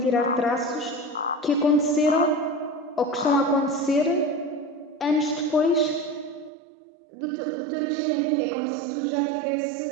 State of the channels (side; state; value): left; drops out; at 6.5 s